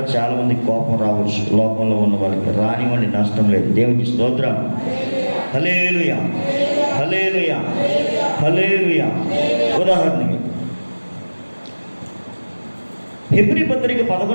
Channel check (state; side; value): inverted; both; correlation -1.00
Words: చాలా మంది కోపం రావచ్చు, లోకంలో ఉన్న వాళ్ళకి. రానివ్వండి, నష్టం లేదు. దేవునికి స్తోత్రం. హల్లెలూయా, హల్లెలూయా, హల్లెలూయా. ఉదాహరణకి హెబ్రీ పత్రిక